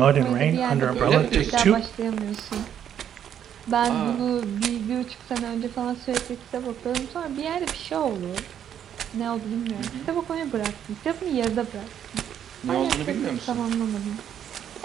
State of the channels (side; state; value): left; quieter; 9.5 dB